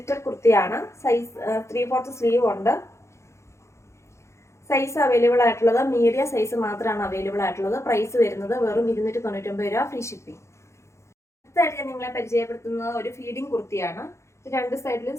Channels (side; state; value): right; late; 0.14 ms